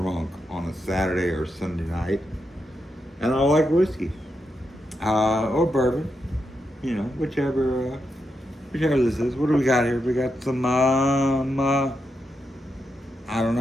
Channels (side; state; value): both; normal; correlation 0.85